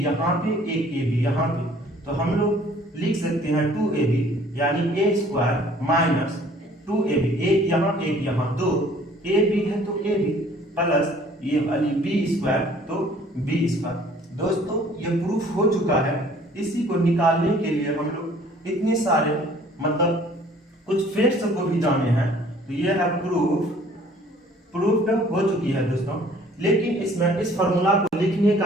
यहाँ पे, एक ए बी यहाँ पे, तो हम लोग लिख सकते हैं 2ab, यानी ए स्क्वायर माइनस 2ab, एक यहाँ एक यहाँ, दो ए बी है तो ए बी प्लस ये वाली बी स्क्वायर तो बी स्क्वायर। दोस्तों ये प्रूफ हो चुका है, इसी को निकालने के लिए हम लोग इतने सारे मतलब कुछ फैक्ट्स को भी जाने हैं, तो ये है प्रूफ हो चुकी है दोस्तों। लेकिन इसमें इस फॉर्मूला को लिखने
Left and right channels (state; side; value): normal; both; correlation 0.55